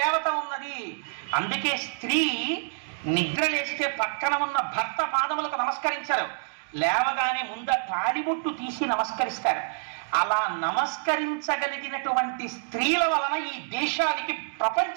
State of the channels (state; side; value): silent; left; digital silence